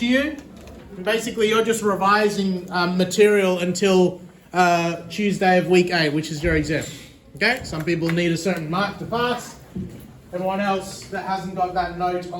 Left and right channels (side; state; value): both; identical; correlation 1.00